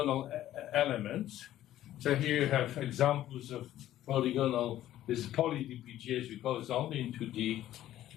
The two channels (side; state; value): right; quieter; 13.1 dB